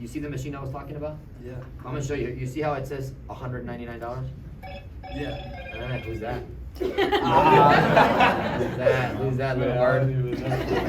You see the machine I was talking about? Yeah. I'm gonna show you. You see how it says $199? Yeah. Who's that? Who's that little word?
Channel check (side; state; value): both; identical; correlation 1.00